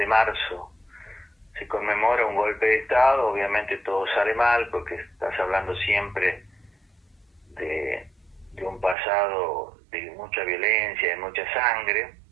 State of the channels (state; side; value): drops out; left; at 9.0 s